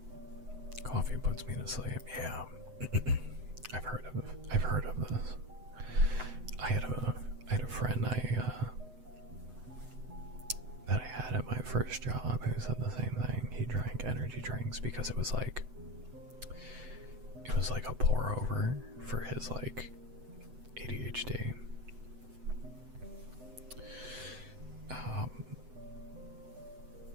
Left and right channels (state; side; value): late; left; 7.9 ms